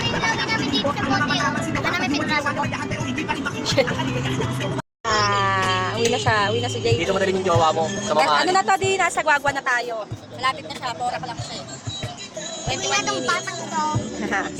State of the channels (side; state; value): both; identical; correlation 1.00